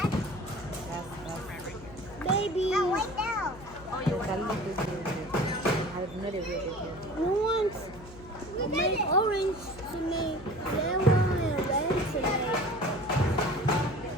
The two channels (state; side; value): noise; left; hum, 19 dB below the sound